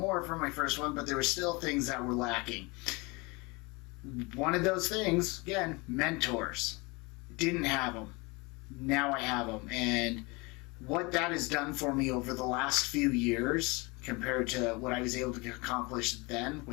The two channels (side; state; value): right; quieter; 26.5 dB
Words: from my first one, but there were still things that were lacking. One of those things, again, mentors. Didn't have them. Now I have them. And what that has done for me over the last few years compared to what I was able to accomplish then